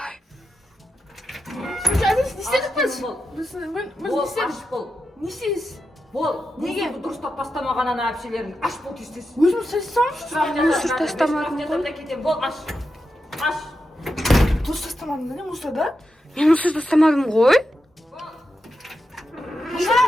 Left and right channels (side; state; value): both; normal; correlation 0.89